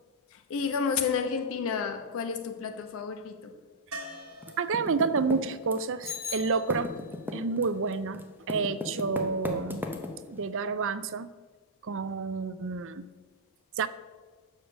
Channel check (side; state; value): both; normal; correlation -0.10